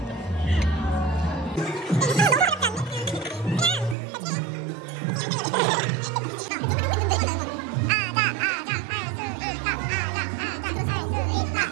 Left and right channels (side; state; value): left; drops out; at 4.0 s